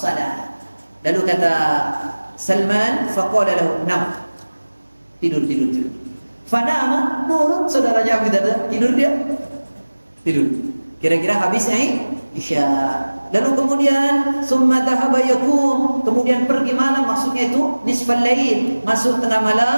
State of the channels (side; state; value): both; inverted; correlation -1.00